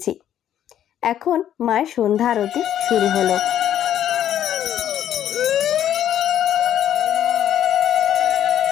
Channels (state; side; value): quieter; right; 10.8 dB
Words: এখন মায়ের সন্ধ্যা আরতি শুরু হলো।